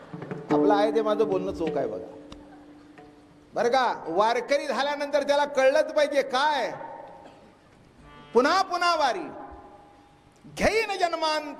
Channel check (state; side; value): identical; both; correlation 1.00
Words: आपलं आहे ते माझं बोलणं चोख आहे बघा, बरं का. वारकरी झाल्यानंतर त्याला कळलंच पाहिजे काय, पुन्हा पुन्हा वारी घेईन